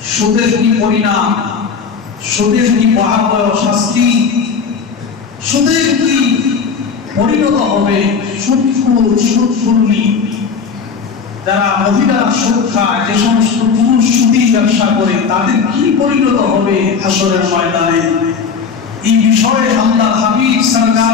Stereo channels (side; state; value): right; quieter; 5.8 dB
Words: সুদের কি পরিণাম, সুদের কি ভয়াবহ শাস্তি, সুদের কি পরিণত হবে, সুদখোর যারা মহিলা সুদ খায়, যে সমস্ত পুরুষ সুদী ব্যবসা করে, তাদের কি পরিণত হবে হাসরের ময়দানে। এই বিষয়ে আল্লাহ হাবিব